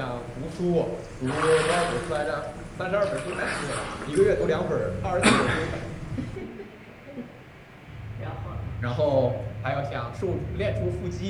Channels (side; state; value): both; identical; correlation 1.00